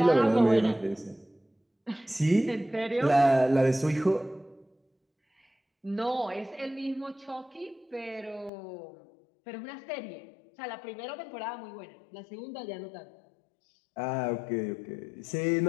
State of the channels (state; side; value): drops out; right; at 8.5 s